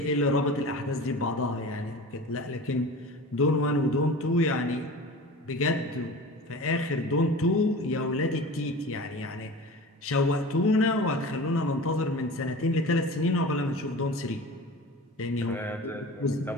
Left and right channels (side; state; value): both; normal; correlation 0.35